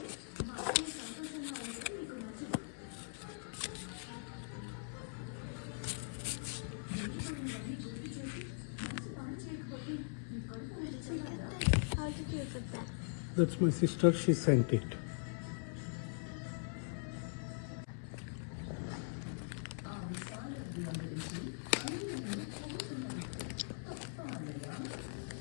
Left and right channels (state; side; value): silent; right; 50 dB below the other